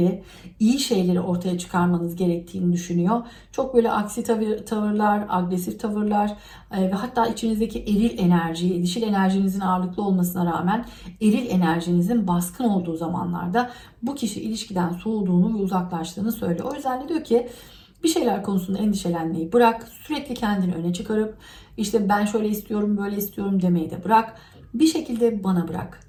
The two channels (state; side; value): identical; both; correlation 1.00